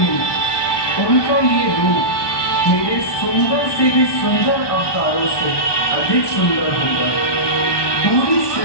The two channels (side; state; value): right; late; 1.2 ms